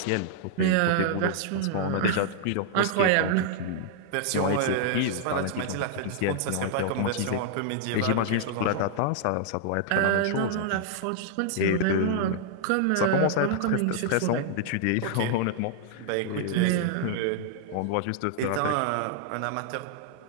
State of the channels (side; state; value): both; different; correlation -0.01